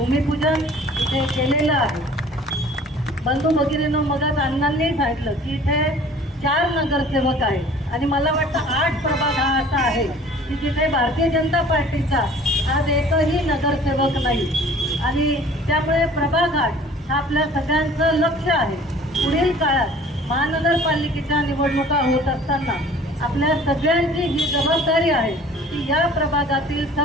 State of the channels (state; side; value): normal; both; correlation 0.49